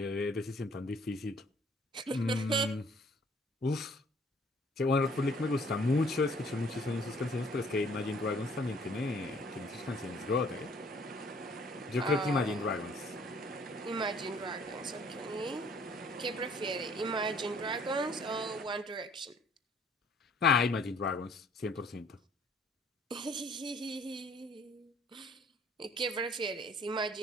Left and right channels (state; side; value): normal; both; correlation 0.59